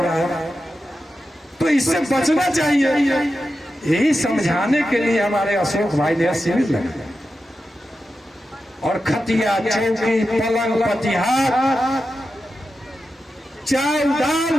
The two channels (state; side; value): normal; both; correlation 0.90